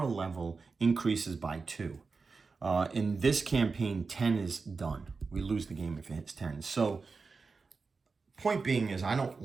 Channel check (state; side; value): quieter; left; 4.5 dB